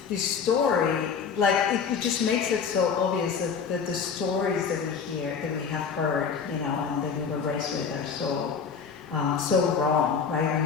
this story, like, it just makes it so obvious that the stories that we hear, that we have heard, you know, and that we were raised with are so wrong, right? When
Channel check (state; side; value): quieter; right; 6.2 dB